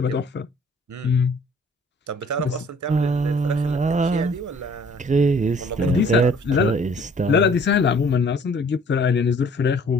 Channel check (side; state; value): both; normal; correlation 0.56